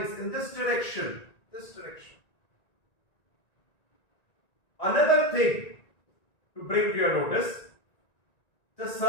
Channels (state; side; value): late; right; 1.9 ms